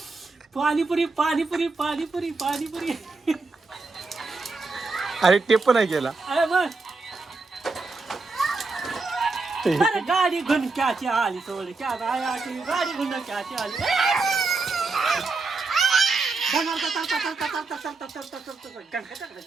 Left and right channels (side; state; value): left; quieter; 3.9 dB